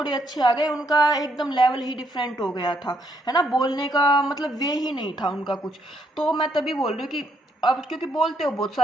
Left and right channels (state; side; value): normal; both; correlation 0.73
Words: अच्छे आ गए उनका एकदम लेवल ही डिफरेंट हो गया था, है ना, बोलने का मतलब वे ही नहीं था उनका कुछ। तो मैं तभी बोल रही हूँ कि अब क्योंकि बोलते हो बहुत